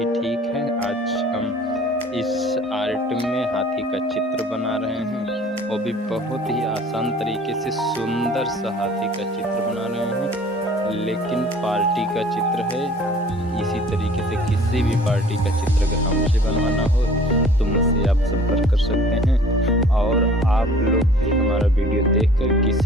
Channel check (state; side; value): normal; both; correlation 0.50